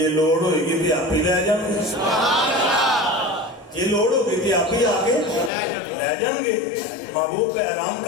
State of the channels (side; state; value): right; drops out; at 5.5 s